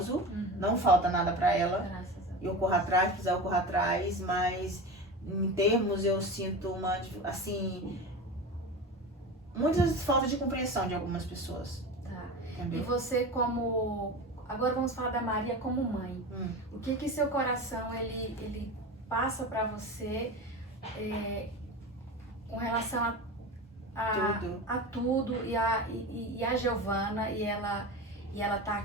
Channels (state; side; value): normal; both; correlation 0.28